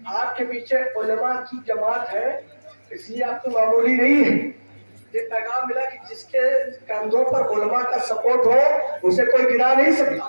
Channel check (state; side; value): inverted; both; correlation -1.00